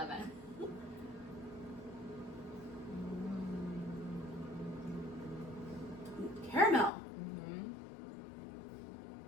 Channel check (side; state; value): right; drops out; at 6.9 s